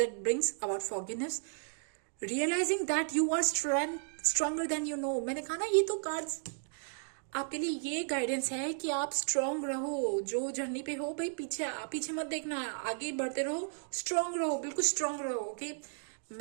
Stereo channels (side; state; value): left; silent; digital silence